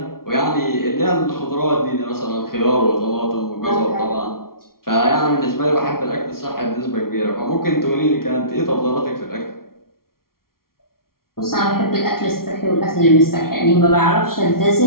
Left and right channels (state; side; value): late; right; 0.93 ms